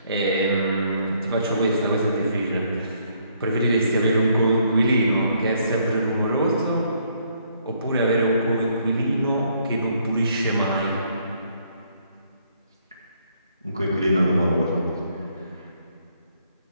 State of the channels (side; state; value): both; inverted; correlation -0.69